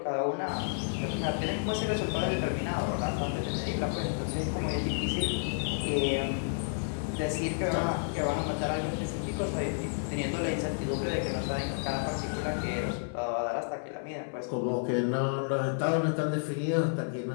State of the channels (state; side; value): silent; right; digital silence